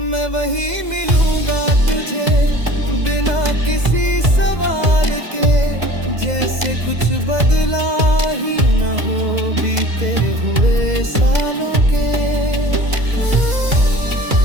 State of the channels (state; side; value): late; left; 2.0 ms